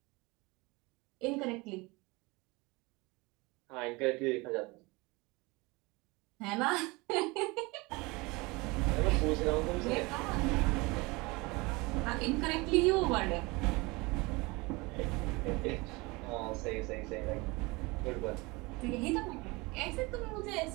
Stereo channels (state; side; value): quieter; left; 24.6 dB